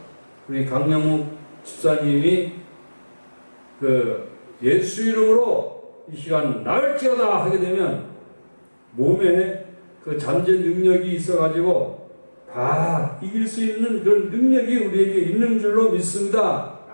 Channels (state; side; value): inverted; both; correlation -1.00